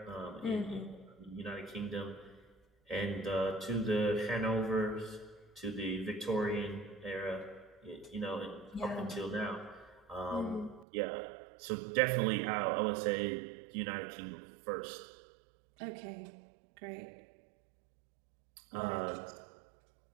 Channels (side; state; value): left; drops out; at 10.9 s